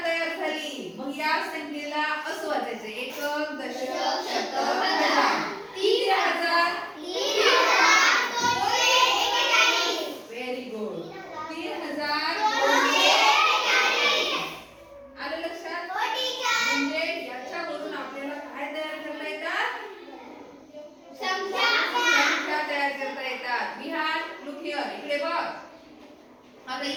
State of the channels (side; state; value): both; identical; correlation 1.00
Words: तयार झाली. मग या संख्येला असं वाचायचं, एकक, दशक, शतक, हजार. 3000. Very good. 3000. आलं लक्षात? म्हणजे याच्यावरून आपल्याला काय तयार करता येतात? संख्या तयार करता येतात. विहार लुक हिअर, इकडे बघ. आता